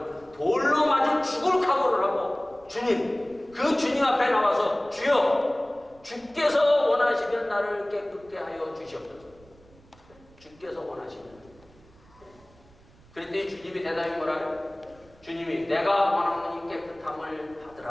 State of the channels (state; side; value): noise; right; rumble, 27 dB below the sound